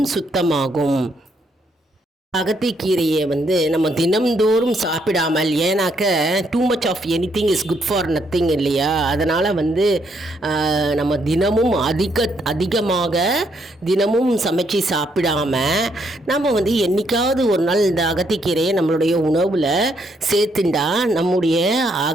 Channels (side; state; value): both; normal; correlation 0.73